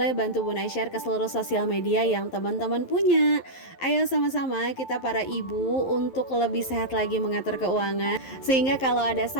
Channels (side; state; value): right; late; 11 ms